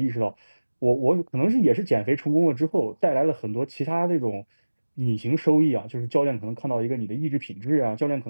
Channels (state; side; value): inverted; both; correlation -1.00